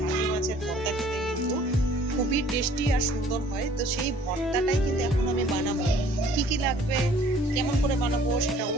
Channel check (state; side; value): normal; both; correlation 0.55